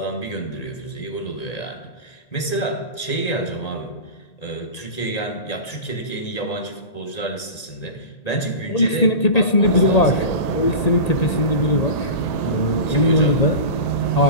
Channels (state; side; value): late; right; 1.8 ms